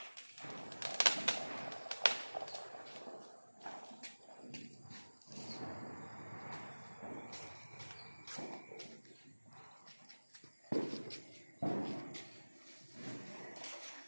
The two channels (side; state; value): both; inverted; correlation -1.00